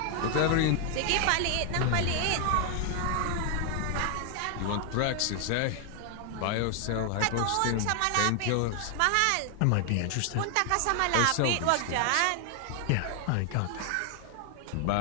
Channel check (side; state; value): both; different; correlation 0.00